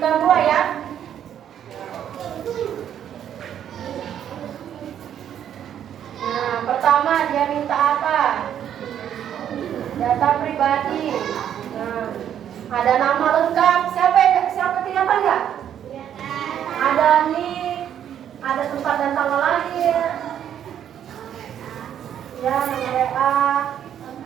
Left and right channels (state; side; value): quieter; left; 9.8 dB